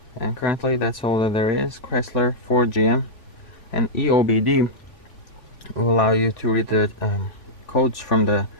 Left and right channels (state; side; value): late; right; 3.5 ms